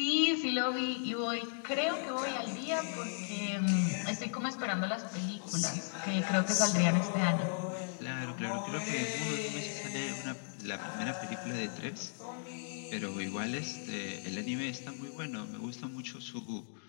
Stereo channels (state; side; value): silent; right; digital silence